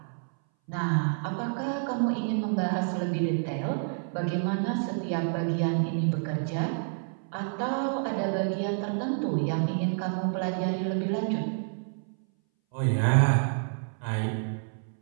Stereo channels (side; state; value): left; silent; 59 dB below the other